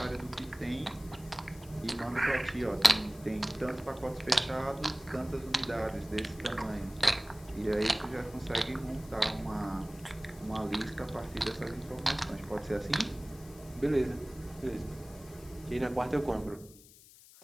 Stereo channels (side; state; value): left; noise; hiss, 21 dB below the sound